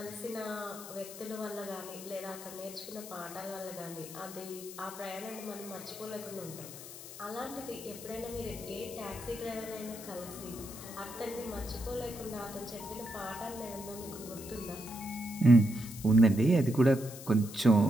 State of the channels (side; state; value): left; noise; hiss, 13 dB below the sound